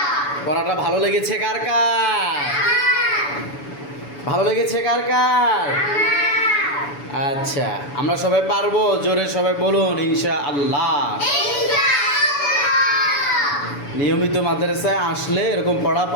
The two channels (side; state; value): right; late; 7.0 ms